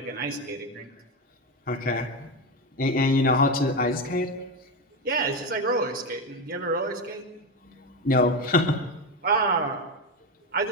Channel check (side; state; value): both; normal; correlation 0.14